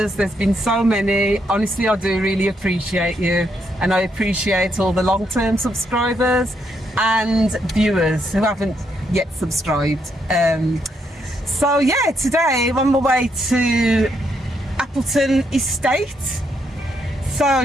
There's been so many. Honestly, I do really appreciate you, and I appreciate all the long-term subscribers and viewers who haven't yet subscribed. So yeah, today I'm on my way to Appleton Estate.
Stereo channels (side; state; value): both; normal; correlation 0.77